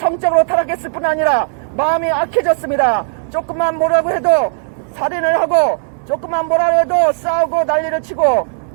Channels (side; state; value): left; silent; 69 dB below the other